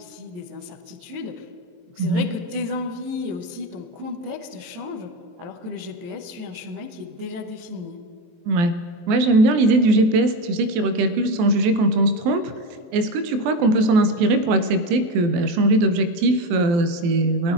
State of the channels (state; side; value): late; left; 23 ms